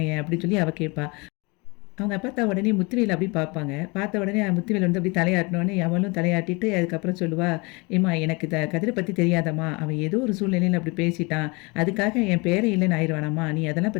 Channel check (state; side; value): quieter; right; 27.5 dB